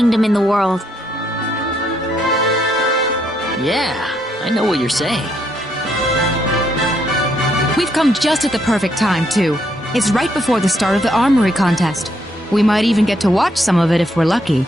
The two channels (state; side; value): normal; both; correlation 0.74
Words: in the world. Yeah, I know what you're saying. We've come just at the perfect time, too. It's right before the start of the armory contest. We might even get to watch some of it if we're lucky.